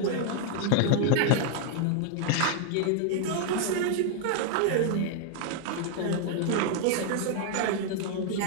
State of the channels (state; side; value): different; both; correlation 0.00